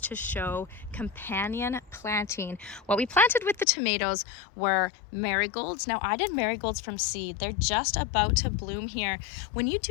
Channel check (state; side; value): drops out; right; at 3.7 s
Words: to show companion planting. What we planted with the tomatoes were marigolds. Now I did marigolds from seed. They're just about to bloom here. When you